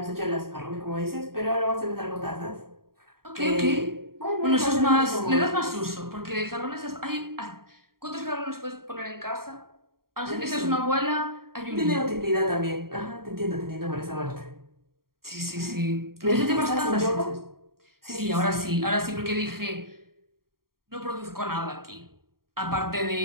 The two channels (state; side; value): late; left; 0.93 ms